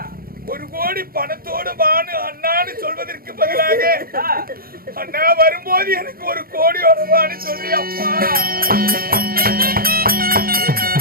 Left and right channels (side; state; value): left; late; 0.43 ms